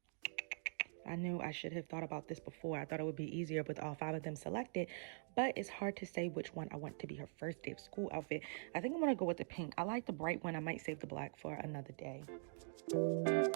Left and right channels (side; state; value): left; silent; digital silence